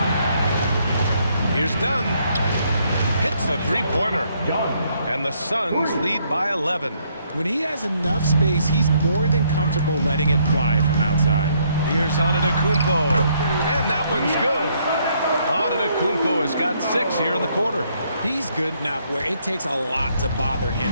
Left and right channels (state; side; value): inverted; both; correlation -0.70